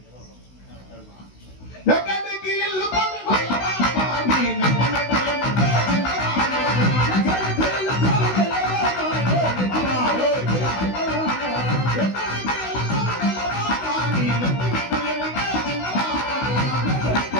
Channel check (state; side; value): late; right; 16 ms